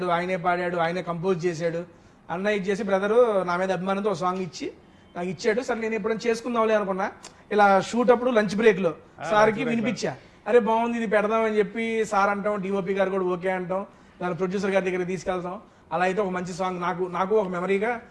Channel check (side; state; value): both; identical; correlation 1.00